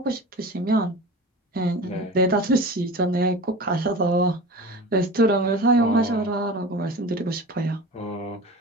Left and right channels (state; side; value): normal; both; correlation 0.34